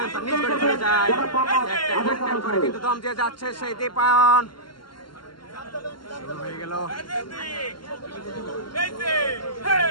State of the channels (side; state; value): right; late; 0.72 ms